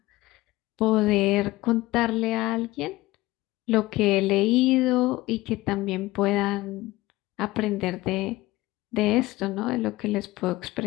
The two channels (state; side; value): quieter; right; 18.8 dB